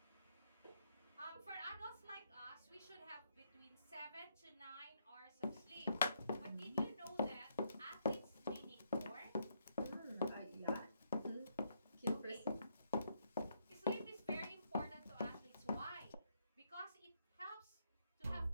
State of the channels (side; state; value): both; inverted; correlation -0.75